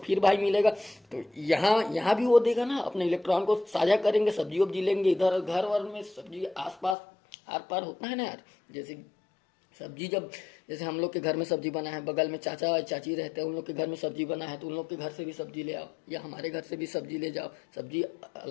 भाई मिलेगा। तो यहाँ भी वो देगा ना, अपने इलेक्ट्रॉन को साझा करेंगे, सब्जी वब्जी लेंगे। इधर घर वर में सब्जी आसपास आर पार होता है ना यार, जैसे सब्जी जब जैसे हम लोग के घर में सब्जी बना है, बगल में चाचा चाची रहते हैं, उन लोग के घर में सब्जी बना है तो उन लोग के घर से भी सब्जी ले आओ, या हमारे घर से भी सब्जी ले जाओ। सब्जी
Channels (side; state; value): right; drops out; at 7.0 s